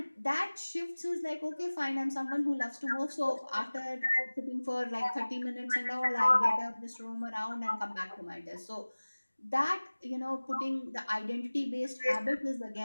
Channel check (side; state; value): both; inverted; correlation -1.00